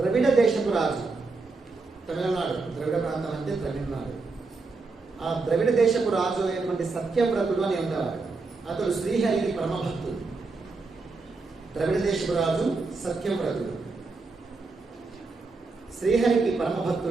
దేశపు రాజు, తమిళనాడు, ద్రవిడ ప్రాంతం అంటే తమిళనాడు. ఆ ద్రవిడ దేశపు రాజు అయినటువంటి సత్యవ్రతుడు అని ఉండేవాడు. అతడు శ్రీహరికి పరమభక్తుడు. ద్రవిడ దేశపు రాజు సత్యవ్రతుడు, శ్రీహరికి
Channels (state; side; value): quieter; left; 3.9 dB